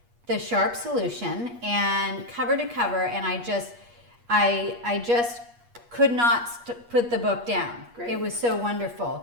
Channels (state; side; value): late; left; 8.4 ms